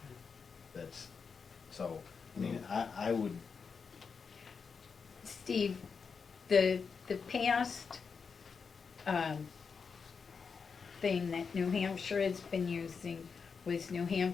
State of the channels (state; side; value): quieter; right; 5.6 dB